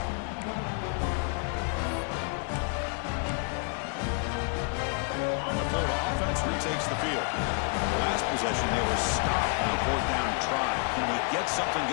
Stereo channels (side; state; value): right; quieter; 37.4 dB